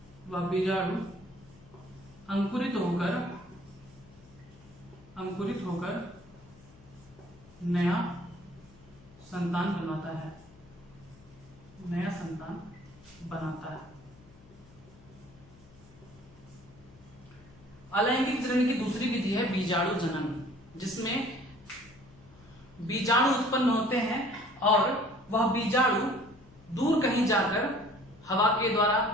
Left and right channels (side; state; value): left; noise; hum, 24 dB below the sound